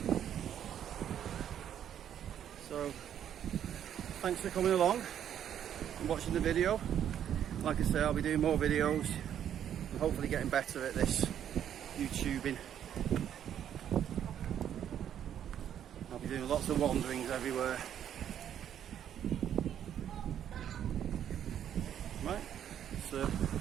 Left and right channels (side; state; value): left; quieter; 9.8 dB